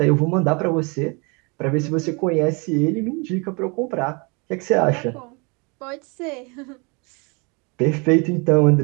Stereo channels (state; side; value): quieter; left; 31.0 dB